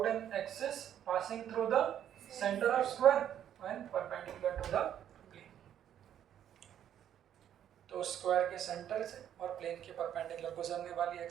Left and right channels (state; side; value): quieter; left; 10.2 dB